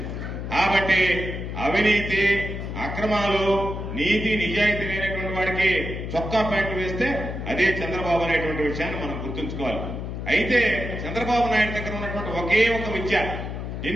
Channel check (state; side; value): noise; left; hum, 6 dB below the sound